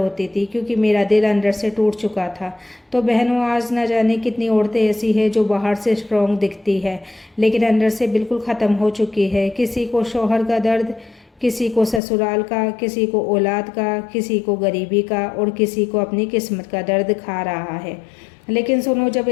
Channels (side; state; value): right; drops out; at 12.0 s